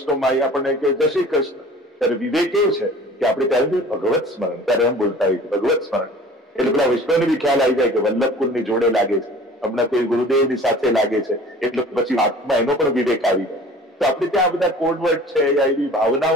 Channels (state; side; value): normal; both; correlation 0.45